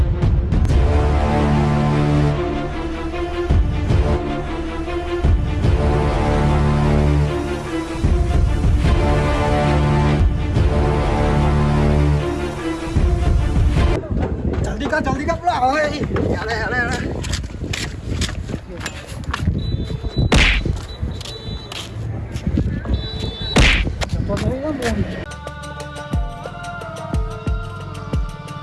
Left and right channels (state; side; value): identical; both; correlation 1.00